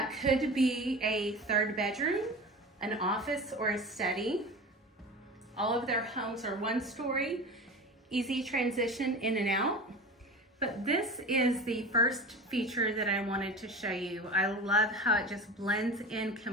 could be a 3rd bedroom, an office, or a study. All of their homes are 1-story, easy transition in and out. But this is the first feature that I wanted to show you. I love how it just blends in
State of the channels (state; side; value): normal; both; correlation 0.32